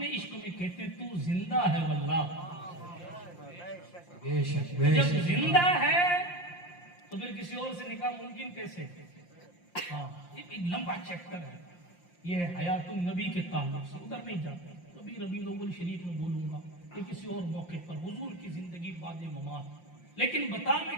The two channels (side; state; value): right; late; 5.7 ms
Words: عشق میں کہتے ہیں تو زندہ ہے واللہ، جب زندہ ہے تو پھر کسی اور سے نکاح ممکن کیسے؟ ہاں ایک لمبا چیپٹر ہے، یہ ہے حیات النبی کے تعلق سے، ادھر نہیں جاتا، کبھی ربیع الاول شریف میں بولوں گا کہ کسی اور موقع پر حضور کی زندگی بعد ممات۔ لیکن بتا میں